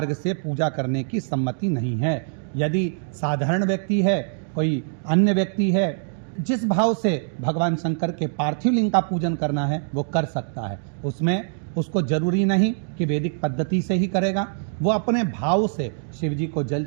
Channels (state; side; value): silent; left; digital silence